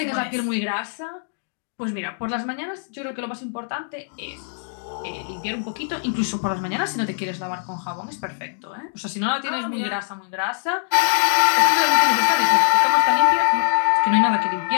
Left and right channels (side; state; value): right; silent; digital silence